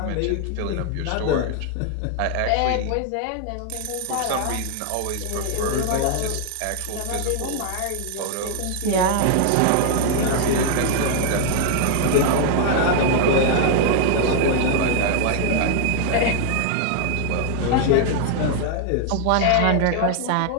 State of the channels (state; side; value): different; both; correlation 0.00